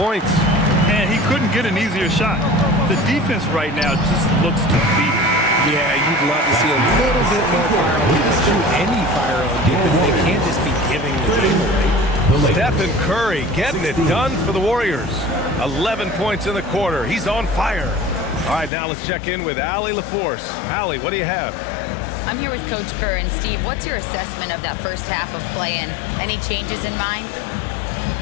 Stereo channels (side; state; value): right; drops out; at 18.7 s